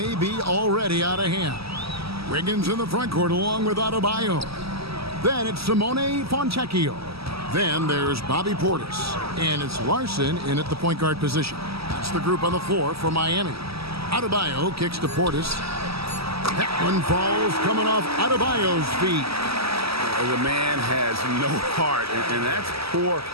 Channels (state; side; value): late; left; 0.76 ms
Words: be already out of hand. Wiggins in the front court along with Adebayo. Then it's Simone Fontecchio. Then there's Bobby Portis. And it's Larson in at the point guard position. That's the group on the floor for Miami. Adebayo kicks to Portis. That one falls coming off Adebayo's feet. The man has no heart, and that's poor